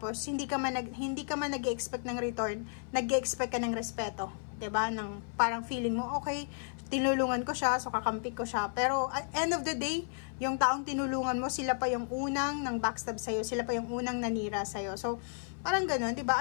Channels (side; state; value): right; silent; 56 dB below the other